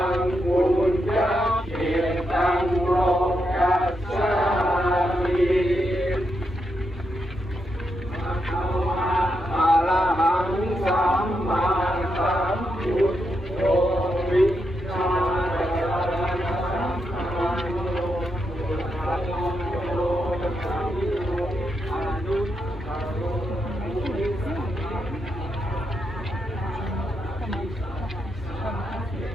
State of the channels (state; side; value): normal; both; correlation 0.83